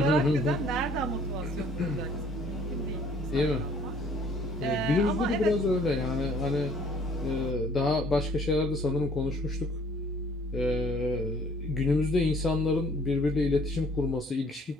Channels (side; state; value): both; normal; correlation 0.57